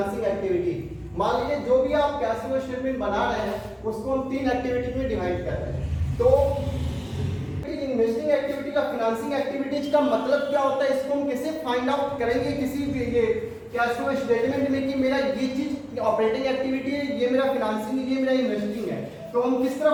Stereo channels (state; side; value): identical; both; correlation 1.00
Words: एक्टिविटी। मान लीजिए जो भी आप कैश फ्लो स्टेटमेंट बना रहे हैं, उसको हम तीन एक्टिविटी में डिवाइड कर रहे हैं। तो इन्वेस्टिंग एक्टिविटी का फाइनेंसिंग एक्टिविटीज का मतलब क्या होता है, इसको हम कैसे फाइंड आउट करेंगे किसी ये कैश फ्लो स्टेटमेंट में कि मेरा ये चीज ऑपरेटिंग एक्टिविटी है, ये मेरा फाइनेंसिंग है, ये मेरा इन्वेस्टिंग है। तो हम किस तरह